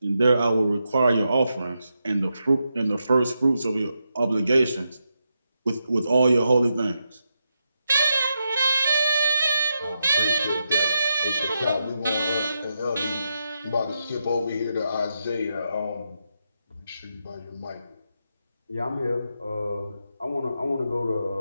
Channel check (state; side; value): inverted; both; correlation -0.85